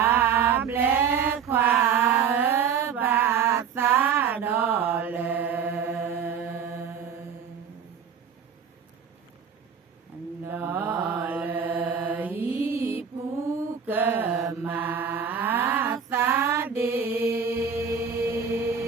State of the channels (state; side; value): quieter; left; 7.1 dB